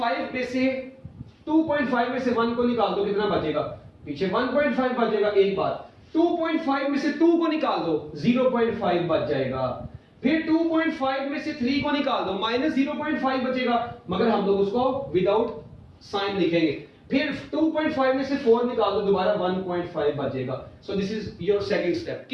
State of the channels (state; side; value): identical; both; correlation 1.00